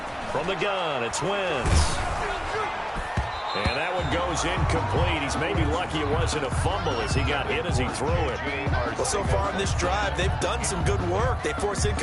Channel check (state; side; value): identical; both; correlation 1.00